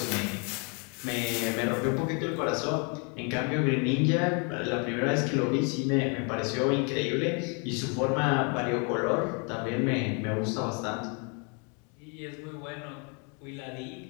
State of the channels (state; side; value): quieter; right; 35.6 dB